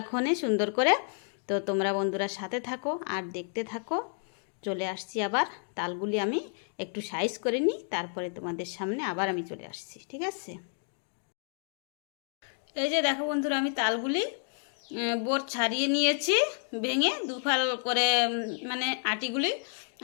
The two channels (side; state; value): right; silent; 57 dB below the other